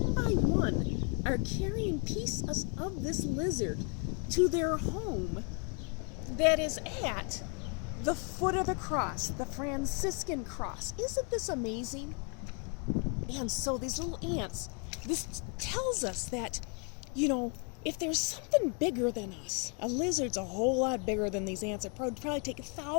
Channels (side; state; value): right; quieter; 35.9 dB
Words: by one, are carrying pieces of this lizard to their home that is at the foot of the cross, the Franciscan cross. Isn't this amazing? And so these little ants, this tells us that, if there's something bigger than us, a lizard's a whole lot bigger than these ants. It would probably take